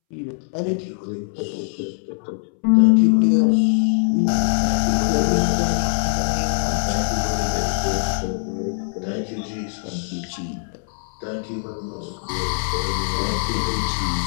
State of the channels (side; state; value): right; silent; 64 dB below the other